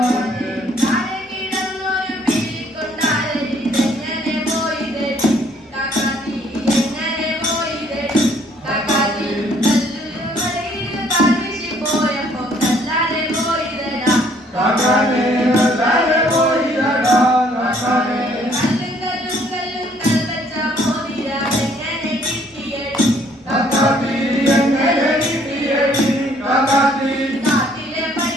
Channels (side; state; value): both; normal; correlation 0.63